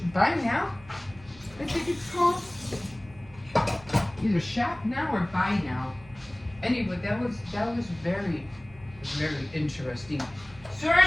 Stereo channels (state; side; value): noise; right; hum, 22 dB below the sound